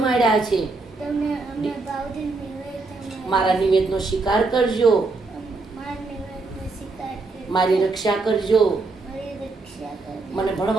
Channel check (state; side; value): quieter; left; 3.7 dB